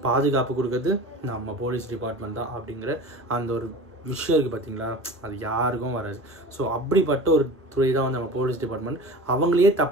பாதுகாப்பு கொடுக்குறது நம்ம போலீஸ் டிபார்ட்மெண்ட் தான் அப்படிங்கிற அந்த ஒரு விஷயம் இருக்குது பார்த்தீங்களா, அது யாருக்கும் வராது. ஸோ அப்படிப்பட்ட ஒரு துறை தான் வந்து நம்ம போலீஸ் டிபார்ட்மெண்ட். அவங்களையே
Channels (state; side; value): normal; both; correlation 0.36